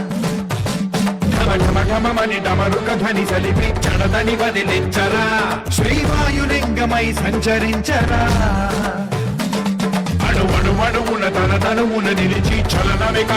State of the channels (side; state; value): both; identical; correlation 1.00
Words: ఢమఢమఢమని డమరుక ధ్వని సలిపి చడదని వదిలించరా శ్రీవాయులింగమై సంచరించరా అణువణువున తన తనువున నిలిచి చలనమే